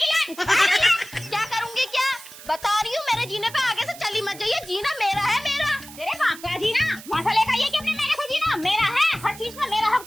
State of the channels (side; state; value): right; noise; hiss, 17 dB below the sound